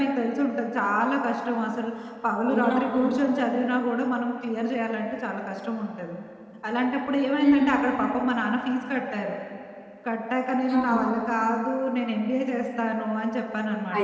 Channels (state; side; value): identical; both; correlation 1.00